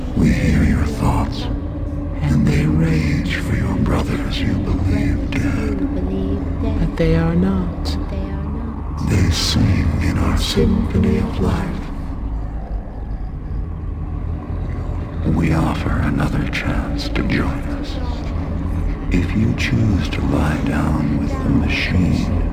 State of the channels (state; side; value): identical; both; correlation 1.00